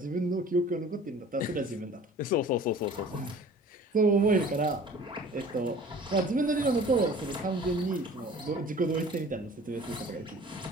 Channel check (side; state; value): both; normal; correlation 0.46